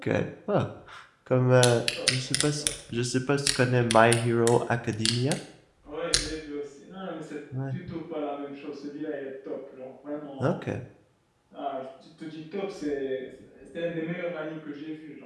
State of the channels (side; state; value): both; identical; correlation 1.00